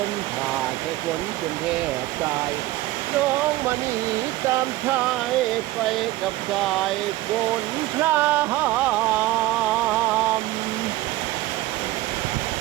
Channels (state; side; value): quieter; left; 17.2 dB